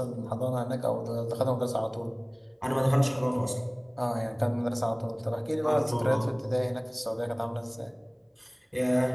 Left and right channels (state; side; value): identical; both; correlation 1.00